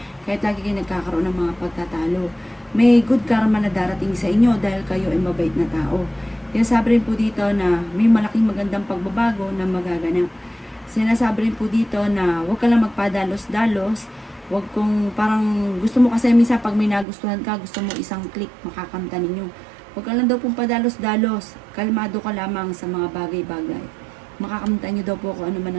kahit lagi kayo nagkakaroon ng mga pagtatalo. May good karma na darating sa inyo dahil kayo ay mabait na tao. Kaya sabi rin po dito na may malaking magandang pagbabago na magaganap. Sinasabi rin po dito na huwag ka lang magpadalos-dalos. Huwag kung parang gusto mo kasi minsan pag may nagustuhan ka, gusto mo isang click makakamta ninyo. Huwag ka lang daw pong padalos-dalos. Kalmado ka lamang sa mga bagay-bagay. Makakamta nyo daw po kung ano man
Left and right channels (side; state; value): left; drops out; at 17.1 s